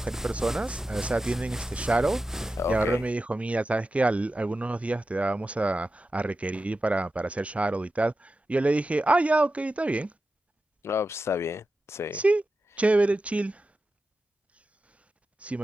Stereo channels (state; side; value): normal; both; correlation 0.92